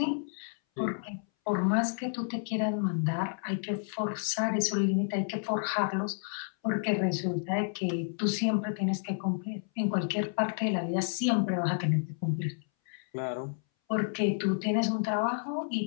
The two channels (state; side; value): silent; right; 57 dB below the other